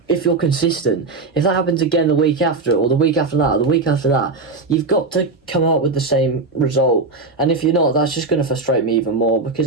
consistent. If that happens again the week after, or the week after that, or the week after that, you've got to come out with the same result. And if you're not, that's just going to frustrate me even more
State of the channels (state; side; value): quieter; left; 3.8 dB